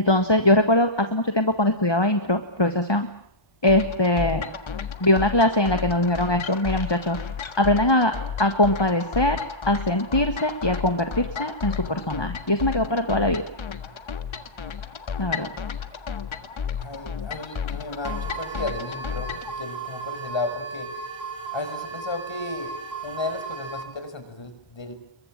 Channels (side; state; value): right; late; 1.2 ms